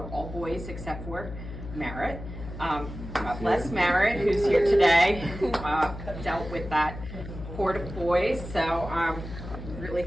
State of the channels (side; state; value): left; noise; hum, 10 dB below the sound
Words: all boys except for Merritt. God bless Merritt, who's here today, who dealt with that horde of boys. So I'm really